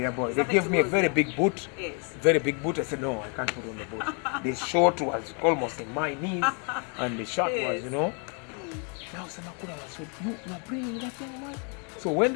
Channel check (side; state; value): right; quieter; 38.0 dB